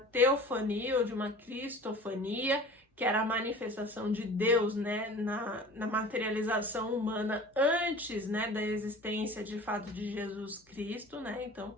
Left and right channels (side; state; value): both; normal; correlation 0.41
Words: ou de uma cristofania, que era a manifestação de Deus, né, na materialização humana antes, né, da existência de fato de Jesus Cristo, né? Então,